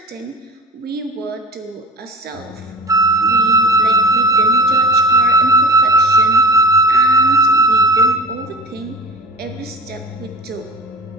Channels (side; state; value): both; normal; correlation 0.34